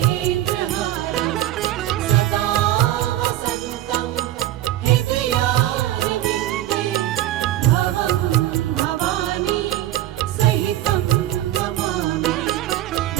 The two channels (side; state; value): left; quieter; 13.7 dB